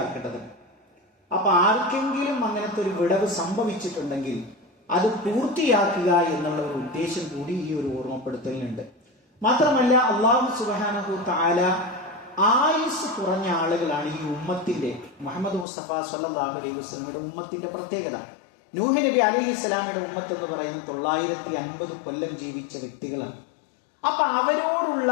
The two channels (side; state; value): right; drops out; at 15.7 s